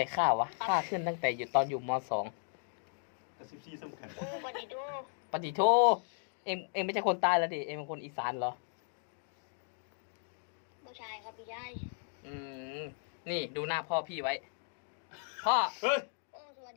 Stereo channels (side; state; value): right; silent; 54 dB below the other